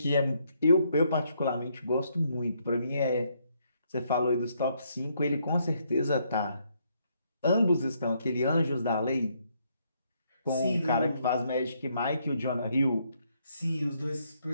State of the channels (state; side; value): inverted; both; correlation -0.73